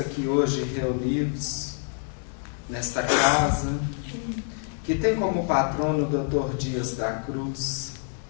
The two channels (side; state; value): right; silent; 56 dB below the other